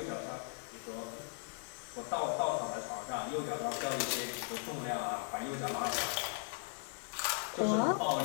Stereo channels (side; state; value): right; silent; 53 dB below the other